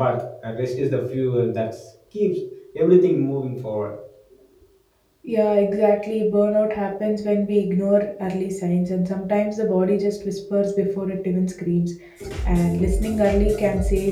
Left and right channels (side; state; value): both; identical; correlation 1.00